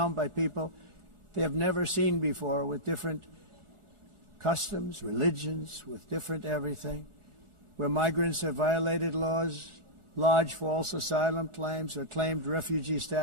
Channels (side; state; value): left; late; 1.4 ms